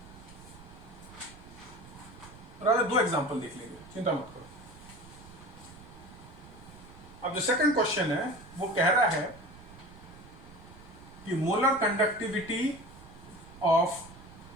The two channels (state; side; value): noise; right; rumble, 19 dB below the sound